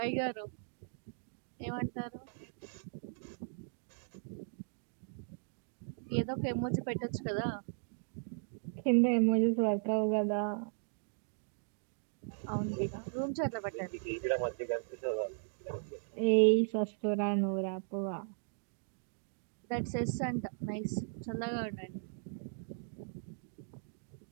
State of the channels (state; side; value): silent; left; digital silence